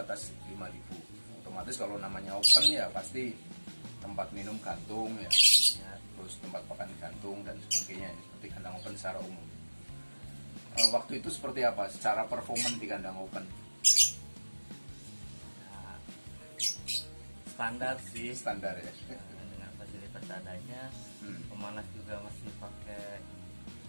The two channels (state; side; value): inverted; both; correlation -1.00